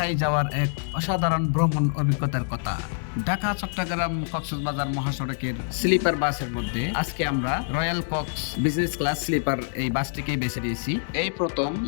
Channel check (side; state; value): right; silent; digital silence